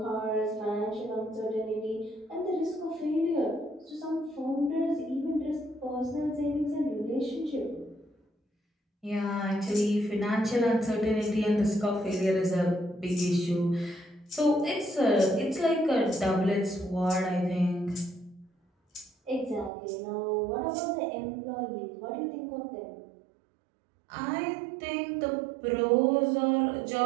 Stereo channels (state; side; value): drops out; left; at 19.7 s